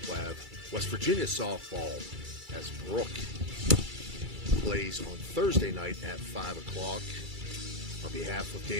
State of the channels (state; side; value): late; left; 2.3 ms